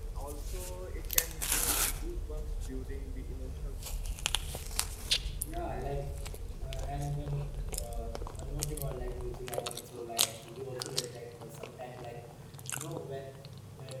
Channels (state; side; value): identical; both; correlation 1.00